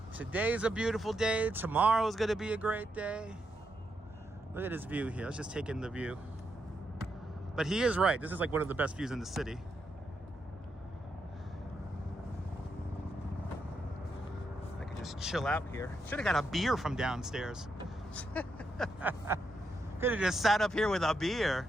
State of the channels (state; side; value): normal; both; correlation 0.82